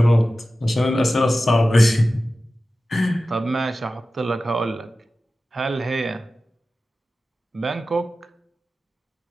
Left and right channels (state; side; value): normal; both; correlation 0.94